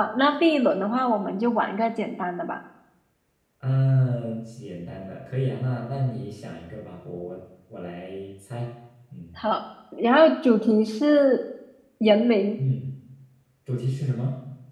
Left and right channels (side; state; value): both; identical; correlation 1.00